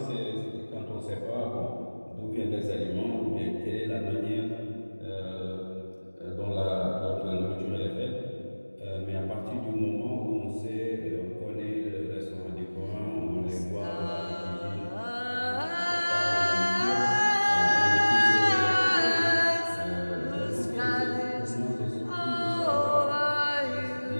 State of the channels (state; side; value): inverted; both; correlation -1.00